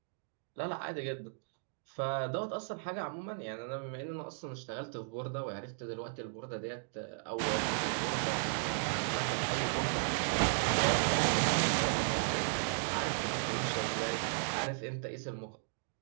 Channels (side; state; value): left; silent; digital silence